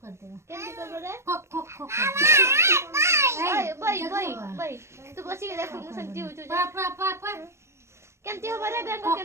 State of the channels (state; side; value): late; left; 0.13 ms